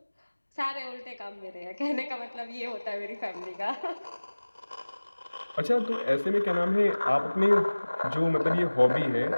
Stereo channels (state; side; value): inverted; both; correlation -1.00